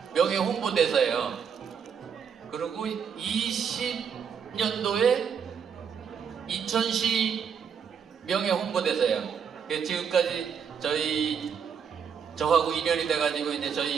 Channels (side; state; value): left; quieter; 7.1 dB